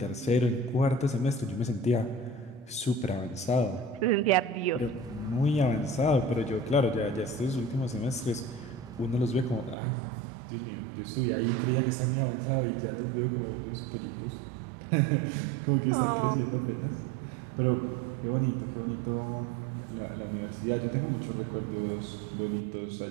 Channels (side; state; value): left; drops out; at 9.8 s